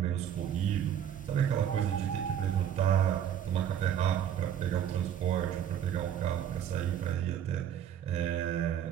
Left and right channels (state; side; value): quieter; left; 9.7 dB